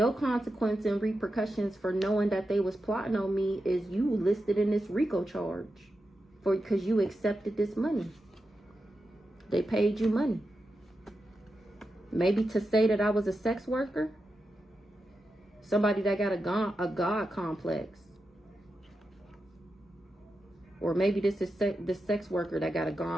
consequence and repercussions for knowing that they was plotting on me is you listed in this RICO charge. Because you accepted this money. They paid you money. Maybe to say that I was a sex worker. Somebody that got a God complex. Or maybe this is the sex worker that got a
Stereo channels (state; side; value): normal; both; correlation 0.89